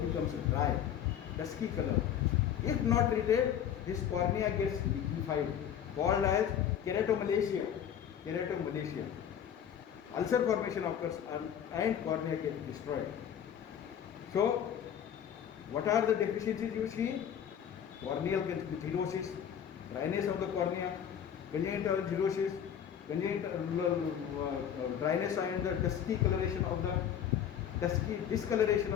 becomes dry, dusky color. If not treated, this cornea gets liquefied, called as keratomalacia. Keratomalacia. Ulcer formation occurs and cornea gets destroyed. So, what are the deficiencies you see? Corneal cirrhosis, dryness of the cornea, congenital cirrhosis, congenital dryness and the dusky coloration of the discoloration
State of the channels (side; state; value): right; quieter; 9.1 dB